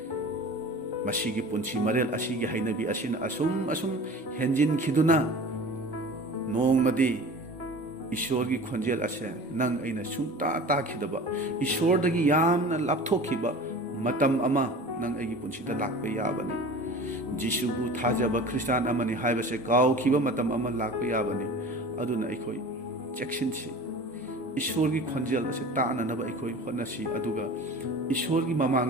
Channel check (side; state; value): both; normal; correlation 0.39